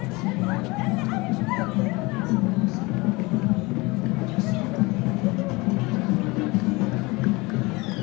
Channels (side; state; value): right; quieter; 24.1 dB